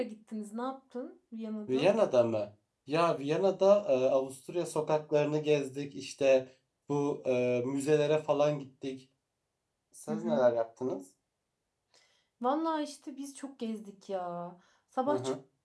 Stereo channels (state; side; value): identical; both; correlation 1.00